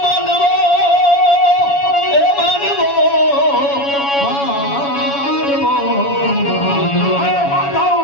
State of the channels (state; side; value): late; right; 7.1 ms